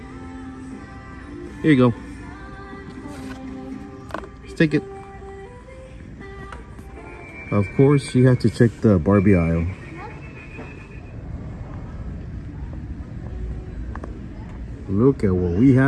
Here you go. Let's take it. Of course, you have to check the Barbie aisle. Look at what we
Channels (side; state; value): both; identical; correlation 1.00